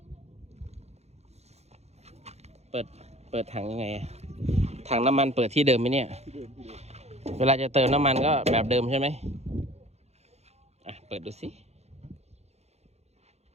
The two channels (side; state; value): left; late; 0.31 ms